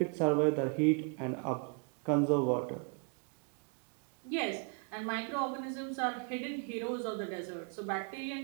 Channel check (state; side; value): quieter; left; 36.5 dB